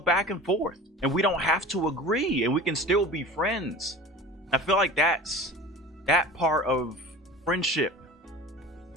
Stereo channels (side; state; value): both; normal; correlation 0.38